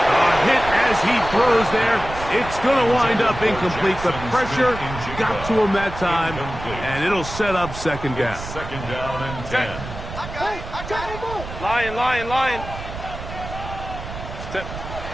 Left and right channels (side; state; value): right; noise; rumble, 10 dB below the sound